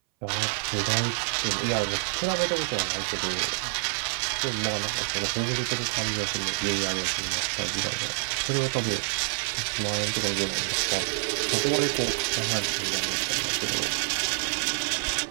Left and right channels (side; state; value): left; silent; 60 dB below the other